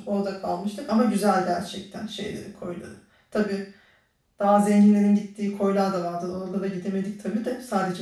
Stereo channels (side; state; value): both; identical; correlation 1.00